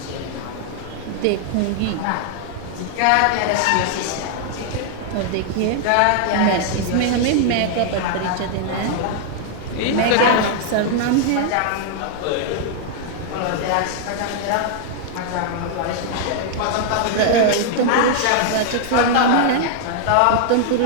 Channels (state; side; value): different; both; correlation -0.01